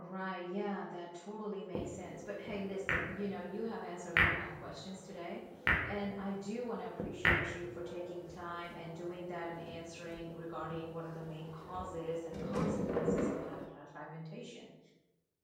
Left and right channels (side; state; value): both; identical; correlation 1.00